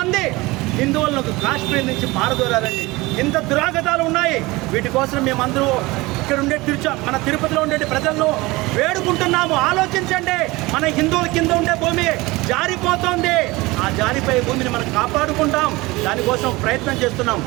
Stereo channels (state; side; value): quieter; left; 21.7 dB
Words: హిందువులను కాశ్మీర్ నుంచి పారదోరారండి. ఇంత దురాగతాలు ఉన్నాయి. వీటి కోసం మేమందరూ ఇక్కడ ఉండే మన తిరుపతిలో ఉండే ప్రజలను వేడుకుంటున్నాము. ఆలోచించండి, మన హిందువుల కింద ఉండే భూమి జారిపోతుంది. ఆ జారిపోయే భూమిని మనం కాపాడుకుంటాం. దానికోసం ప్రయత్నం చేస్తున్నాం.